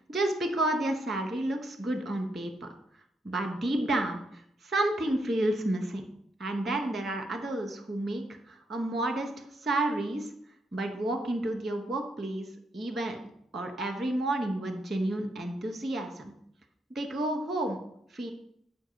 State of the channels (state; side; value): normal; both; correlation 0.78